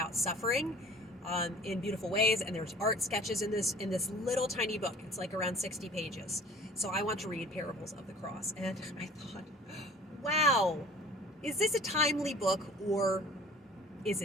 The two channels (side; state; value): both; normal; correlation 0.46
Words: suffering in beautiful ways, and there's art sketches in this little tiny book. It's like around 60 pages. So I want to read Parables of the Cross, and I thought, wow, is this a timely book or